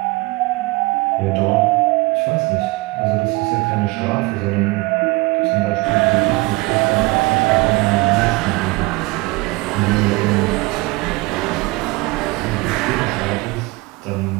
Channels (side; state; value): left; quieter; 23.3 dB